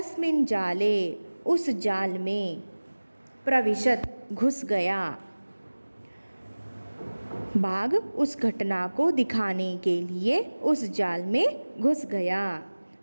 जाले उस जाल में, प्रविशत घुस गया। बाघ उस घटना को दिखाने के लिए उस जाल में घुस गया।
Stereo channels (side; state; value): both; inverted; correlation -1.00